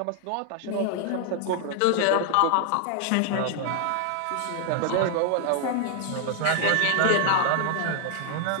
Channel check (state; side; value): different; both; correlation 0.00